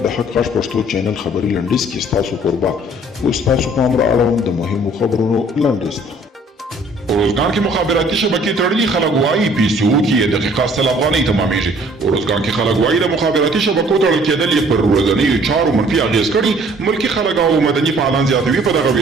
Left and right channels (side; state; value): both; normal; correlation 0.57